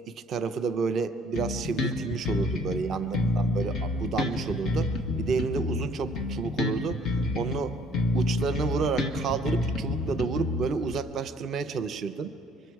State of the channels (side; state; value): both; normal; correlation 0.58